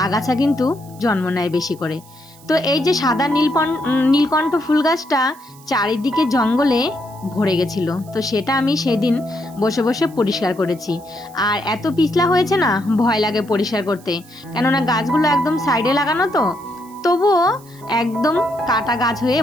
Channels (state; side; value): noise; right; hiss, 24 dB below the sound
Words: আগাছা কিন্তু জন্ম নেয় বেশি করে। তো এই যে সাদা নীলকণ্ঠ ফুল গাছটা চারিদিকে জঙ্গলে ভরে গেছিল, তো সেটা আমি সেদিন বসে বসে পরিষ্কার করেছি। আর এত পিছলা হয়েছে না, ভয় লাগে পরিষ্কার করতে, কেননা গাছগুলো একদম সাইডে লাগানো, তো তবুও একদম কাটা গাছ হয়ে